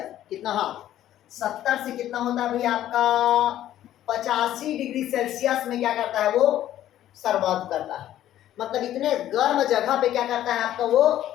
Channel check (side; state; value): right; quieter; 12.5 dB